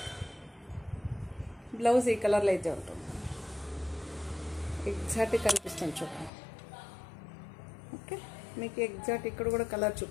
బ్లౌజ్ ఈ కలర్లో అయితే ఉంటుంది. ఎగ్జాక్ట్గా కనిపిస్తుంది చూడండి. ఓకే, మీకు ఎగ్జాక్ట్ ఇక్కడ కూడా కలర్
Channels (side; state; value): right; drops out; at 6.3 s